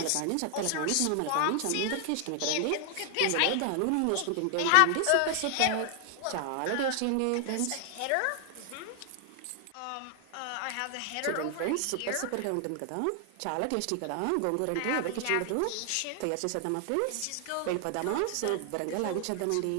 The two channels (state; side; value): different; both; correlation 0.00